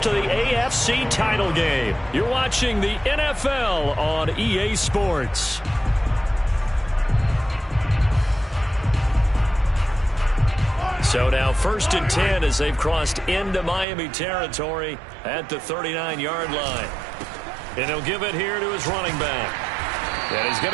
to the AFC title game. You're watching the NFL on EA Sports. So now 1st and 10 as they've crossed into Miami territory at the 39-yard line. And he'll give it here to his running back. And he's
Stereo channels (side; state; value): left; drops out; at 13.9 s